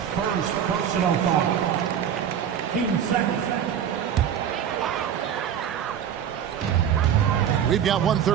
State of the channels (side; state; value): left; quieter; 8.9 dB